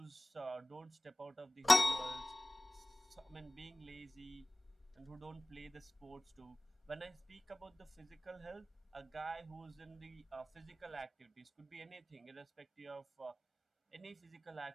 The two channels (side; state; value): both; normal; correlation 0.98